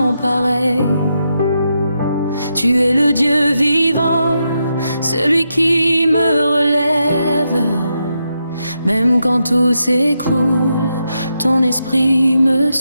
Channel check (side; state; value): both; inverted; correlation -0.84